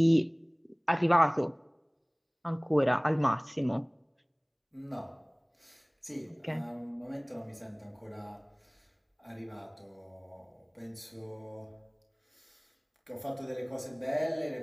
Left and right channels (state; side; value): identical; both; correlation 1.00